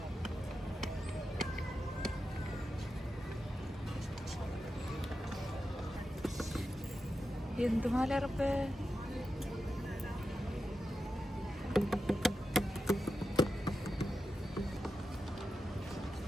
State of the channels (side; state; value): both; normal; correlation 0.90